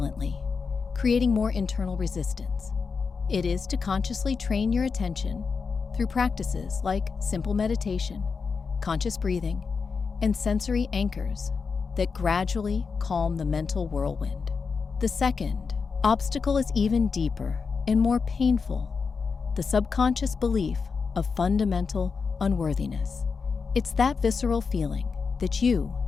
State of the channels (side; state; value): right; quieter; 5.2 dB